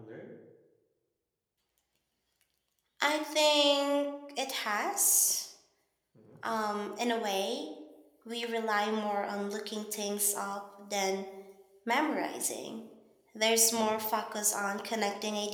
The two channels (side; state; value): both; identical; correlation 1.00